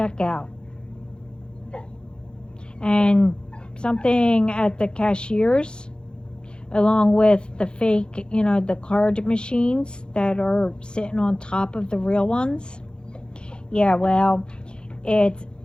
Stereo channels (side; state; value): right; late; 0.050 ms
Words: And something at the cashiers, along with the fake, the card machines that are sitting on top of the real ones. Yeah, well, it